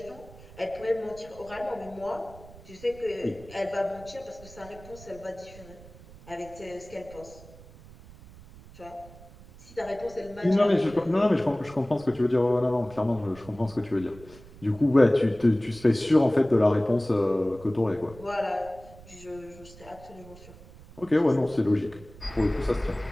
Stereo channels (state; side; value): noise; right; rumble, 20 dB below the sound